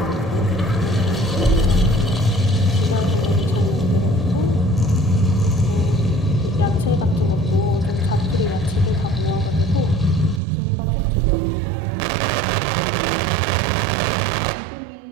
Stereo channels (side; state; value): left; drops out; at 10.4 s